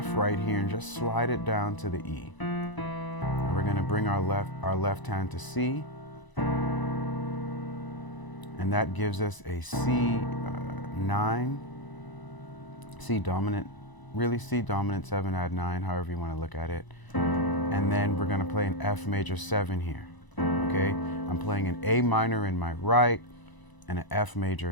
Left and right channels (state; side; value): late; right; 1.0 ms